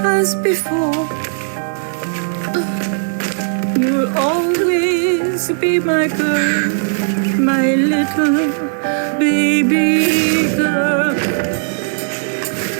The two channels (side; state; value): left; silent; digital silence